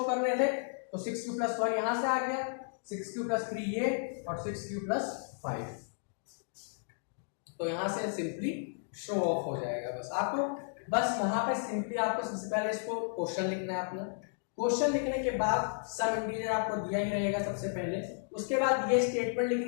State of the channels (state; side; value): silent; right; digital silence